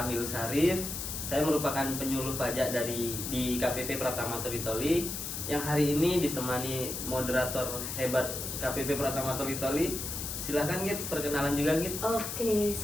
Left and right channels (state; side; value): noise; left; hiss, 5 dB below the sound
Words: Syarif. Saya merupakan penyuluh pajak di KPP Pratama Toli Toli, yang hari ini ditemani moderator hebat KPP Pratama Toli Toli. Silahkan Git, perkenalan juga Git. Oke,